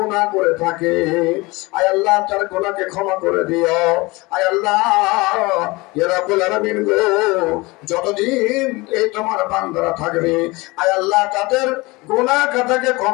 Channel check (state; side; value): quieter; right; 23.3 dB